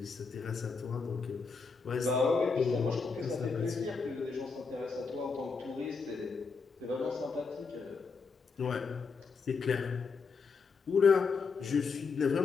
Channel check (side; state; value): right; quieter; 4.9 dB